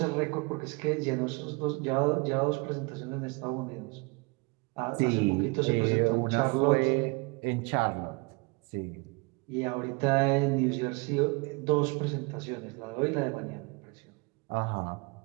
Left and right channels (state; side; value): quieter; left; 29.3 dB